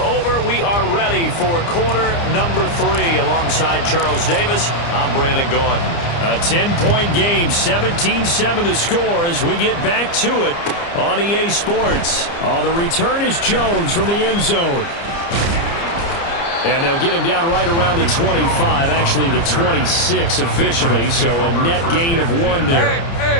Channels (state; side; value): late; right; 29 ms